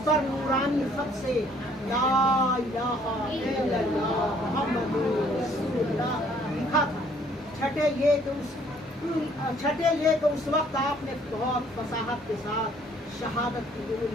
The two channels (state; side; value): normal; both; correlation 0.61